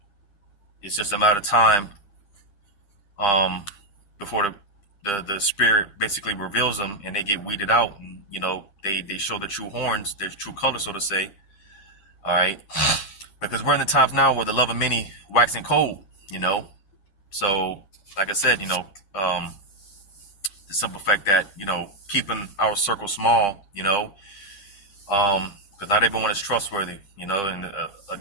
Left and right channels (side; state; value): right; late; 10 ms